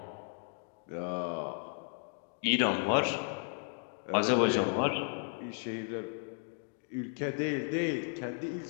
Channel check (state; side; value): silent; right; 55 dB below the other